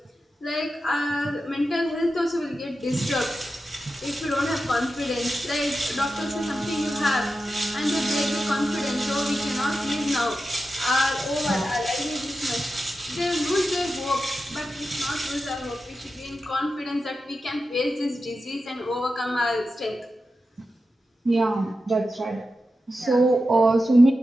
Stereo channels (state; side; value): normal; both; correlation 0.91